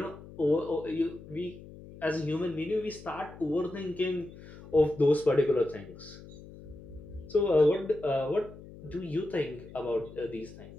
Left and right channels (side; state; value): left; noise; hum, 17 dB below the sound